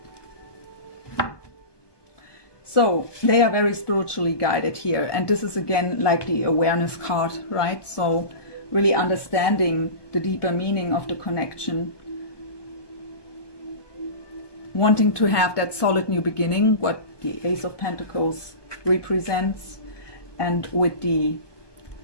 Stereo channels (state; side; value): late; right; 1.2 ms